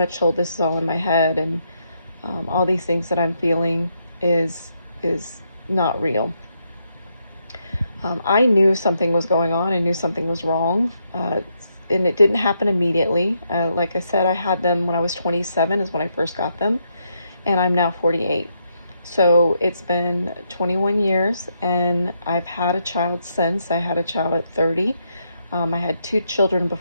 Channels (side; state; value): both; inverted; correlation -0.78